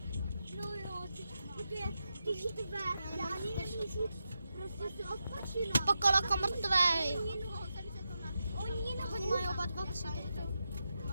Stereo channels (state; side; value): inverted; both; correlation -0.88